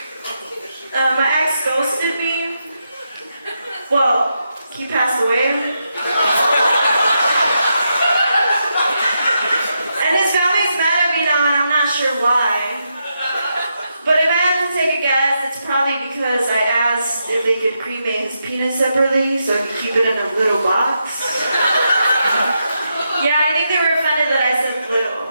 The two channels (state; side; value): inverted; both; correlation -0.83